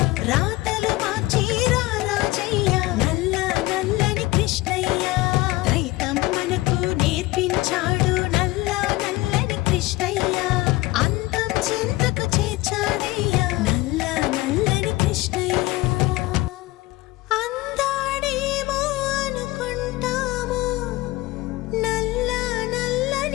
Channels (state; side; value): quieter; right; 19.6 dB